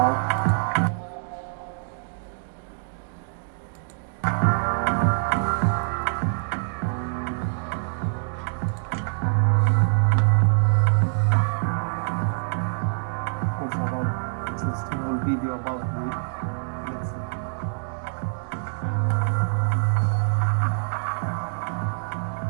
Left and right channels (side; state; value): left; silent; digital silence